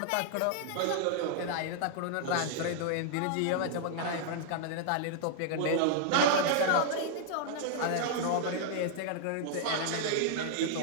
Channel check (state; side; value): different; both; correlation -0.01